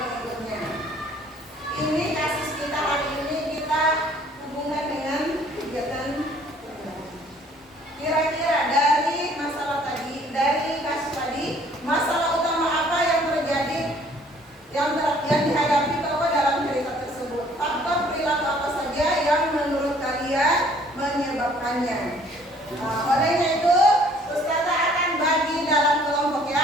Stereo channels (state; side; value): normal; both; correlation 0.58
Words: pengikutnya. Ini kasus kita hari ini, kita hubungkan dengan kegiatan. Kira-kira dari masalah tadi, dari kasus tadi, masalah utama apa yang terjadi, yang dihadapi bahwa dalam cerita tersebut? Faktor perilaku apa saja yang menurut kalian menyebabkannya? Nah, olehnya itu, Ustazah akan bagi dalam kelompok